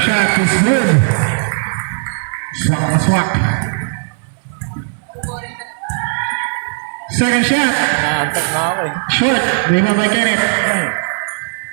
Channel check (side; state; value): left; silent; digital silence